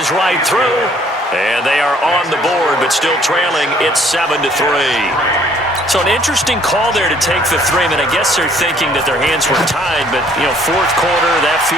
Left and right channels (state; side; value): normal; both; correlation 0.60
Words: right through. And they are on the board, but still trailing. It's 7-3. So an interesting call there to take the 3. I mean, I guess they're thinking that their hands were tied, but, you know, 4th quarter, that